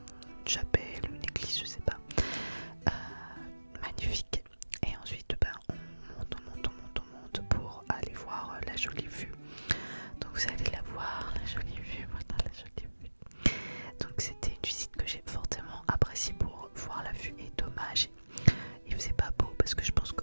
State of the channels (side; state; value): both; inverted; correlation -1.00